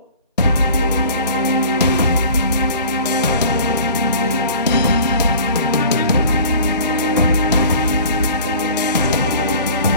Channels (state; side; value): inverted; both; correlation -0.45